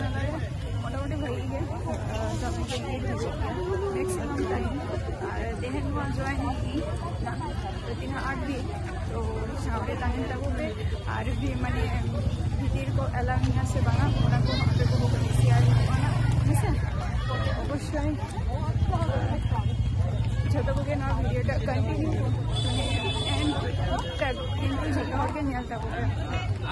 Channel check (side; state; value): both; identical; correlation 1.00